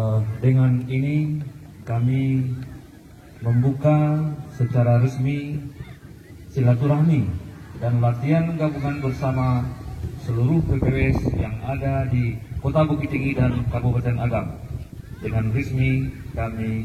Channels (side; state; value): both; identical; correlation 1.00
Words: Dengan ini kami membuka secara resmi silaturahmi dan latihan gabungan bersama seluruh PPWS yang ada di Kota Bukit Tinggi dan Kabupaten Agam. Dengan resmi